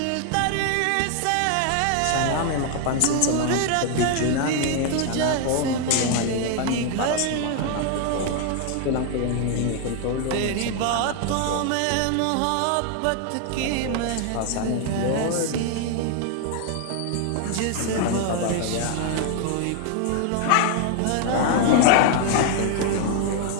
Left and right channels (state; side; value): different; both; correlation 0.00